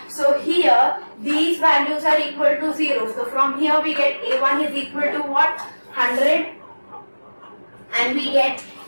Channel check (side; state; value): both; inverted; correlation -1.00